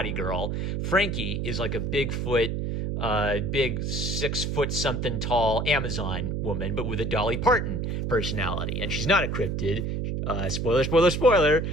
girl. Frankie is like a Bigfoot, big 6 foot something tall Amazon woman, but with a Dolly Parton personality. And she's not a cryptid. Spoiler.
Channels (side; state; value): right; noise; hum, 1 dB below the sound